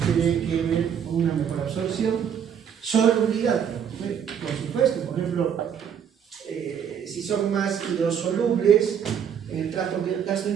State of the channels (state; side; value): quieter; left; 8.1 dB